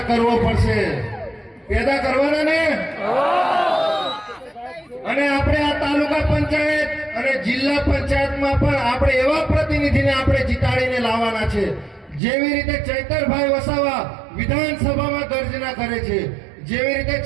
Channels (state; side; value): drops out; left; at 12.2 s